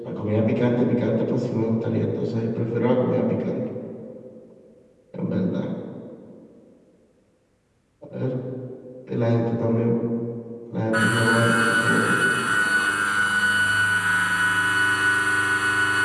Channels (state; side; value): identical; both; correlation 1.00